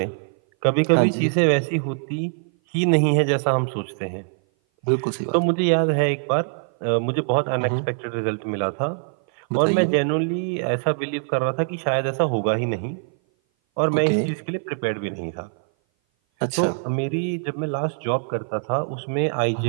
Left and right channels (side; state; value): left; silent; 58 dB below the other